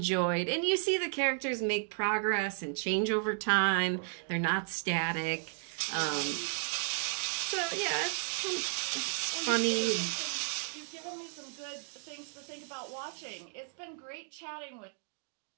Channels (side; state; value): left; silent; 55 dB below the other